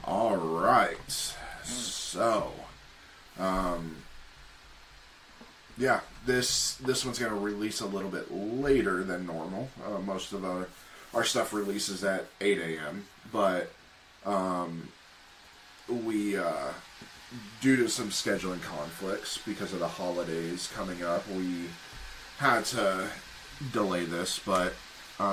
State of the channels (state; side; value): identical; both; correlation 1.00